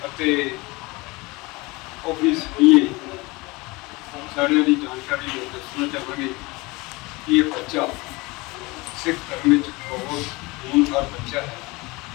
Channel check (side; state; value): right; quieter; 23.8 dB